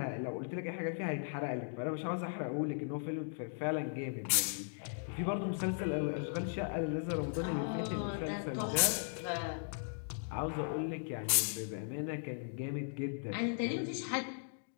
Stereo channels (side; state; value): right; silent; digital silence